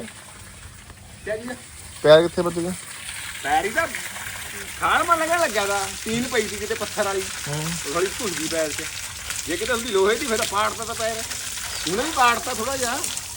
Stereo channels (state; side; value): identical; both; correlation 1.00